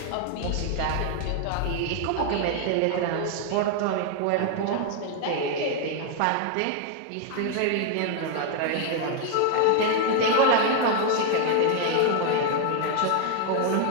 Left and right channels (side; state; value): both; different; correlation 0.00